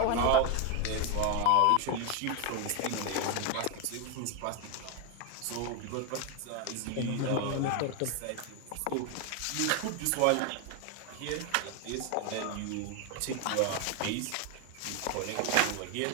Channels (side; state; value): both; different; correlation 0.01